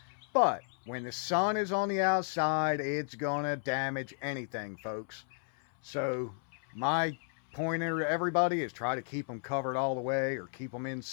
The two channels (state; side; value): silent; right; 56 dB below the other